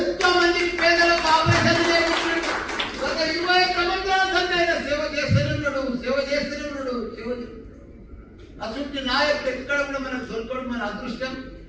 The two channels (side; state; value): both; identical; correlation 1.00